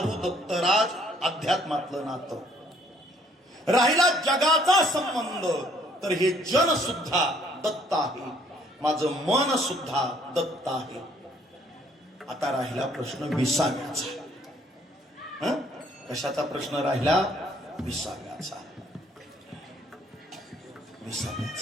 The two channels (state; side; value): normal; both; correlation 0.63